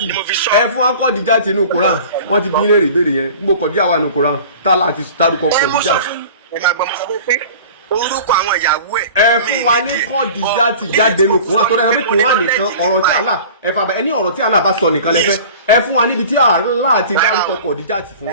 ẹ fún wa Khadija tí nù Quran wọ́n ti bí léèrè ìbéèrè yẹn gbogbo Khadija wà nù Quran tá láti dárúkọ Khadija. Ẹ máa gbọ́ mo sọ pé orúkọ àwọn ìyàwó ẹ̀. Ẹ fún wa ní Khadija tí jáde nù Quran tó dáa pé Quran nìkan ọ̀rọ̀ tí Allah ẹ fà bẹ ẹni ọ̀rọ̀ tí Allah bá sọ nìkan lẹ fẹ́ ẹ fún wa níbi tí Allah ti dárúkọ Khadija tí fún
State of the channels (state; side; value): inverted; both; correlation -0.42